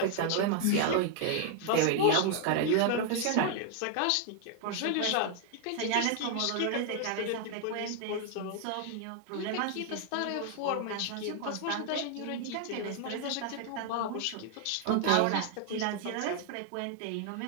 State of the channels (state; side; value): different; both; correlation 0.00